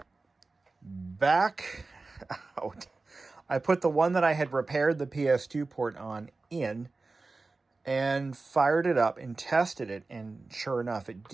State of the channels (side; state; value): left; quieter; 3.6 dB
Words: back out. I put the one that I had repaired the PS2 port on in and fired it up and tested it. And sure enough, it